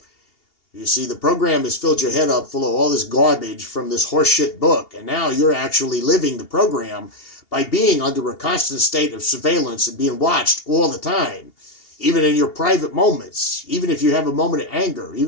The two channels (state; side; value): late; right; 2.8 ms